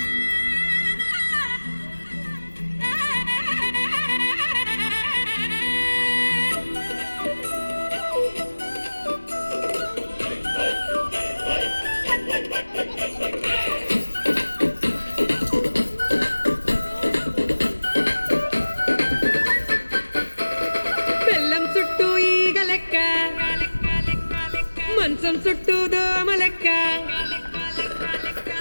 బెల్లం చుట్టూ ఈగ లెక్క మంచం చుట్టూ దోమ లెక్క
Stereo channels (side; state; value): both; inverted; correlation -1.00